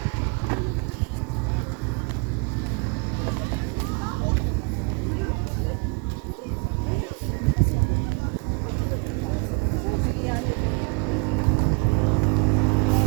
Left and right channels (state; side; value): quieter; left; 33.7 dB